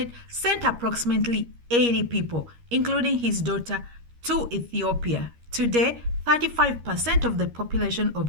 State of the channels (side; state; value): left; late; 13 ms